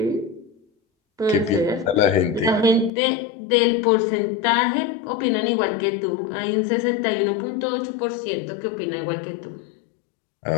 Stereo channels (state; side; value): drops out; right; at 2.9 s